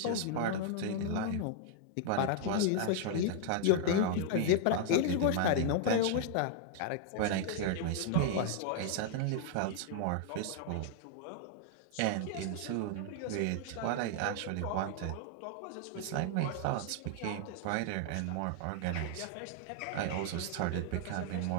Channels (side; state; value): both; different; correlation 0.00